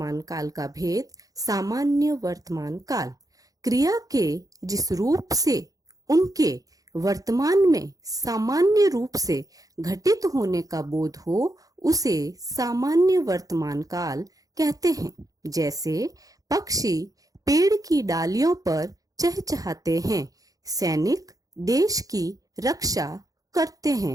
काल का भेद, सामान्य वर्तमान काल। क्रिया के जिस रूप से उनके वर्तमान में सामान्य रूप से घटित होने का बोध हो उसे सामान्य वर्तमान काल कहते हैं। जैसे पक्षी पेड़ की डालियों पर चहचहाते हैं, सैनिक देश की रक्षा करते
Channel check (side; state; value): left; late; 0.17 ms